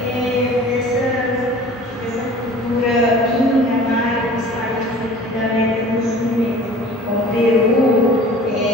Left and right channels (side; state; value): both; normal; correlation 0.45